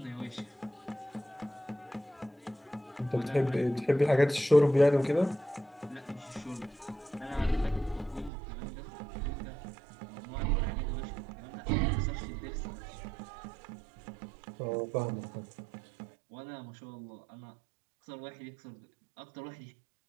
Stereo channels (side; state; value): left; drops out; at 8.3 s